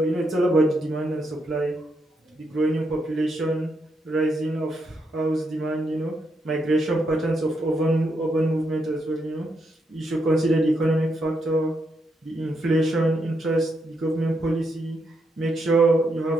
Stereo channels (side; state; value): both; normal; correlation 0.80